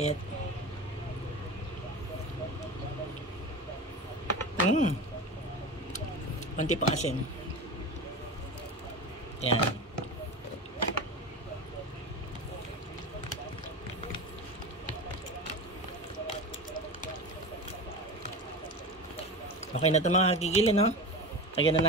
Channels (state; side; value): normal; both; correlation 0.28